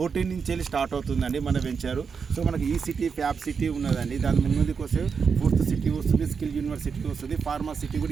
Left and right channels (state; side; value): quieter; left; 5.9 dB